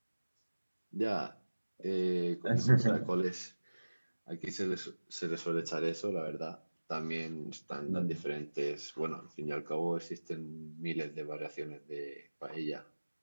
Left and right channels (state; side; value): inverted; both; correlation -1.00